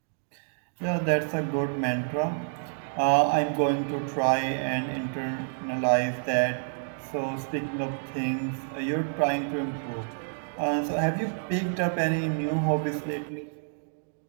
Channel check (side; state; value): left; silent; digital silence